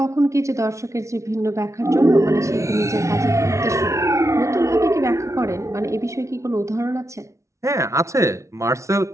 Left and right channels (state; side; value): late; left; 0.14 ms